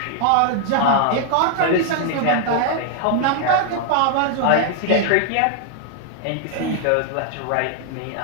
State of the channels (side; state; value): both; different; correlation 0.00